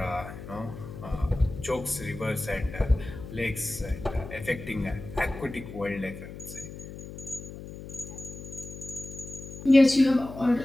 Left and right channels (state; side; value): noise; left; hum, 12 dB below the sound